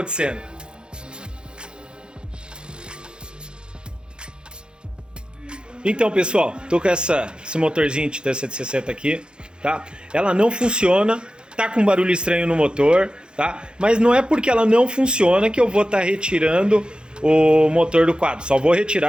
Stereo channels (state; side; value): late; left; 0.050 ms